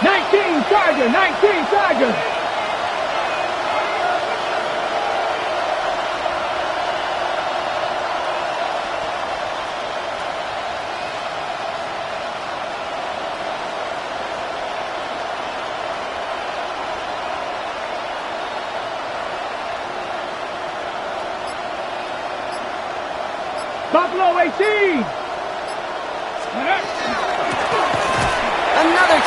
19 Charger, 19 Charger. Buffalo 18. Another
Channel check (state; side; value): identical; both; correlation 1.00